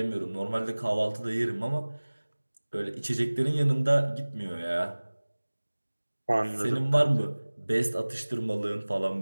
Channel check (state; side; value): inverted; both; correlation -1.00